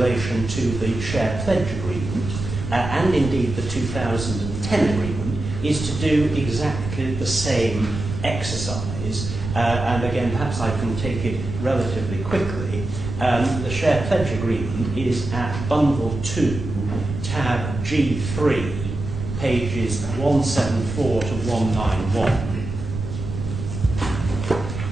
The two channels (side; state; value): right; noise; rumble, 6 dB below the sound